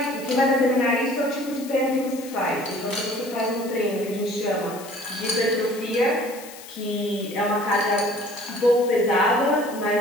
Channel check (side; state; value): left; noise; hiss, 16 dB below the sound